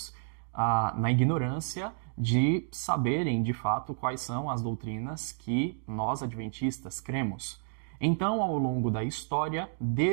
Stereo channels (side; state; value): left; silent; digital silence